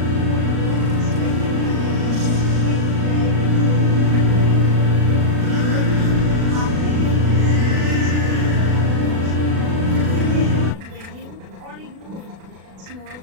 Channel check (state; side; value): late; left; 36 ms